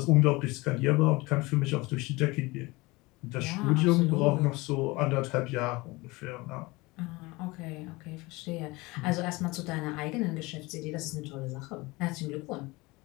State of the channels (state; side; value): quieter; right; 23.0 dB